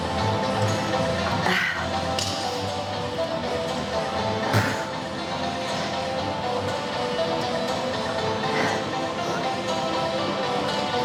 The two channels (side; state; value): both; identical; correlation 1.00